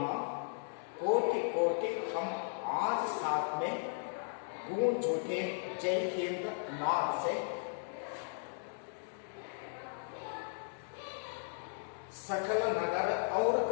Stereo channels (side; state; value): right; silent; digital silence